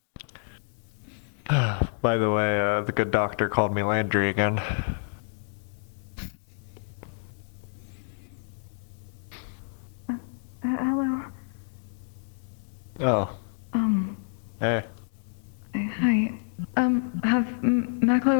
By the way, the good doctor called me Landry again. Hello. Oh. Hey. Hi. Have Maklo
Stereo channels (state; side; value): silent; right; digital silence